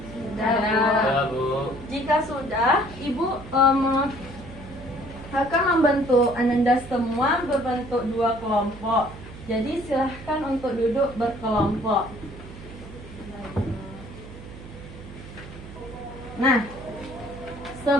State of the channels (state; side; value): noise; right; hum, 15 dB below the sound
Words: Sudah, Bu. Jika sudah, Ibu akan membentuk Anda semua berbentuk 2 kelompok. Jadi silahkan untuk duduk berkelompok. Nah,